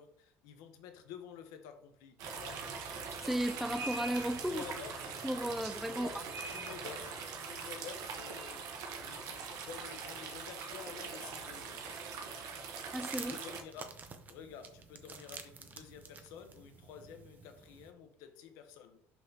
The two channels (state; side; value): normal; both; correlation 0.62